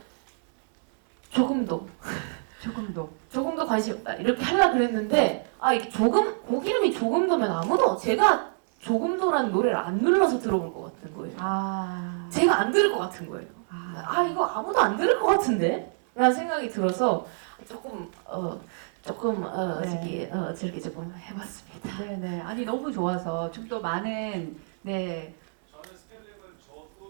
조금도 관심 없다 이렇게 하려고 그랬는데 이게 곡 이름이 조금도면 아무도 제가 조금도라는 노래를 안 눌러서 들어볼 것 같은 거예요. 제가 안 들을 것 같은 거예요. 이거 아무도 안 들을 것 같은데? 라는 생각이 들어서 조금 저렇게 조금 해봤습니다. 네네. 아니 너무 좋아서 좀 더 많은 네. 저는 스펠링을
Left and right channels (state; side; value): silent; left; digital silence